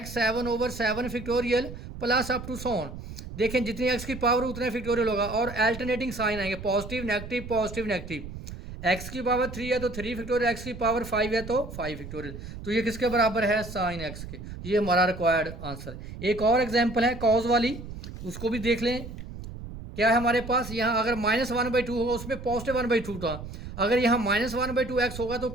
7/7 factorial plus up to so on. देखें जितनी x की पावर उतना फैक्टोरियल होगा और अल्टरनेटिंग साइन आएंगे पॉजिटिव नेगेटिव। x की पावर 3 है तो 3 फैक्टोरियल, x की पावर 5 है तो 5 फैक्टोरियल। तो ये किसके बराबर है साइन x के। ये हमारा रिक्वायर्ड आंसर। एक और एग्जांपल है कॉज वाली, उसको भी देख लें। क्या है हमारे पास यहाँ अगर -1/2 होगा उसमें पॉजिटिव 1/2 था, अगर यहाँ -1/2x होगा तो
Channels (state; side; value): noise; right; rumble, 11 dB below the sound